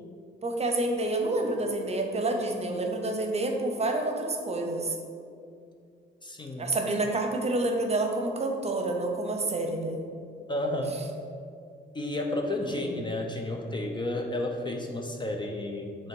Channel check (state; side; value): normal; both; correlation 0.42